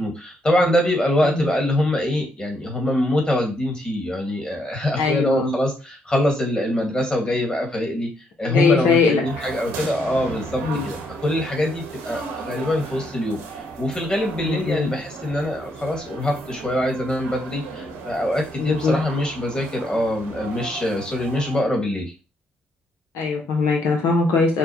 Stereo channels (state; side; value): normal; both; correlation 0.74